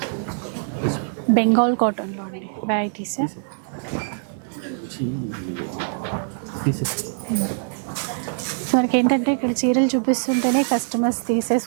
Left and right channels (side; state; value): left; silent; digital silence